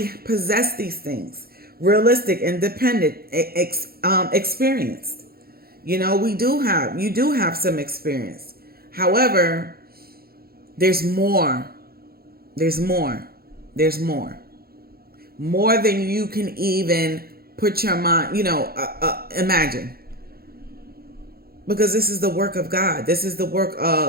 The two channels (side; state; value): left; late; 0.44 ms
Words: possess these things. Realistic, independent, experienced. You do have some experience. However, there's more. There's more. There's more. More than you can even put your mind, imagine. Because this is the work of God. This is the work